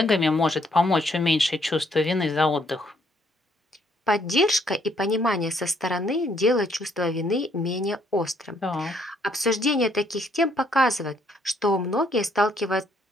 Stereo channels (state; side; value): normal; both; correlation 0.69